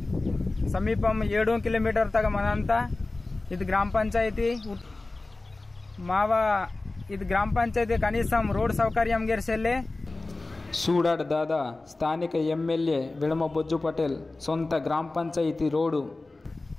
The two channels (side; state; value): right; quieter; 3.2 dB